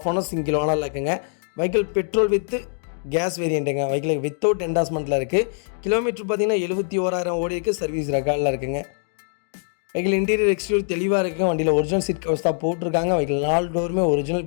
owner, single ஓனரில் இருக்குங்க. வெஹிக்கிள் பெட்ரோல் வித் கேஸ் வேரியண்ட்டுங்க. வெஹிக்கிள் வித்தவுட் என்டாஸ்மெண்ட்டில் இருக்குது. கிலோமீட்டர் பார்த்தீங்கன்னா 71,000 ஓடி இருக்குது. சர்வீஸ் ரெக்கார்டில் இருக்குங்க. வெஹிக்கிள் இன்டீரியர் எக்ஸ்டீரியர் தெளிவாக இருக்குங்க. வண்டியில் ஒரிஜினல் சீட் கவர்ஸ் தான் போட்டிருக்காங்க. வெஹிக்கிள் 4 டோருமே ஒரிஜினல்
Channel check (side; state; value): right; silent; 61 dB below the other